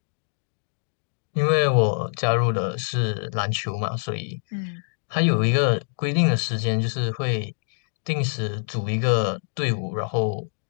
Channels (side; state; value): right; silent; digital silence